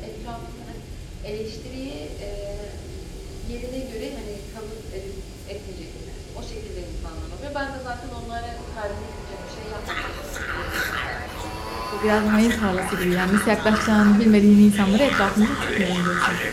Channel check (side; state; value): both; identical; correlation 1.00